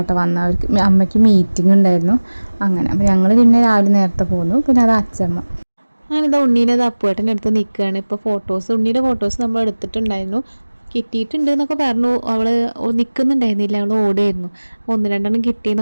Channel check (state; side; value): inverted; both; correlation -1.00